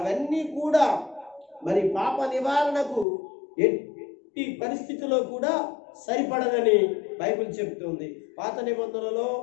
కూడా మరి పాప నివారణకు ఎట్టి పరిస్థితిలో కూడా సరిపడదని బైబిల్ చెబుతుంది. పాత నిబంధనలో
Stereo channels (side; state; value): right; drops out; at 3.1 s